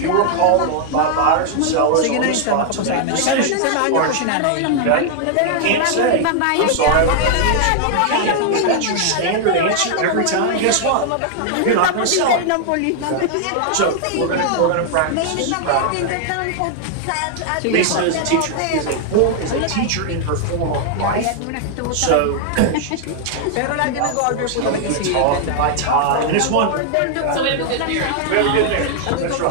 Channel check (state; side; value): different; both; correlation 0.00